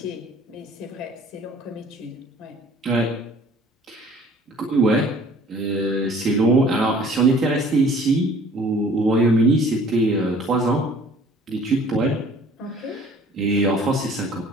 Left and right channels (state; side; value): normal; both; correlation 0.52